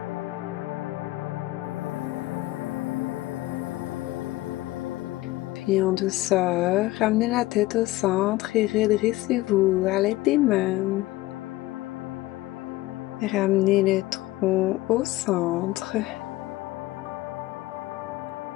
Puis en douceur, ramenez la tête au centre et redressez-vous à l'aide des mains. Ramenez le tronc au centre.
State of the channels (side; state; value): right; quieter; 18.2 dB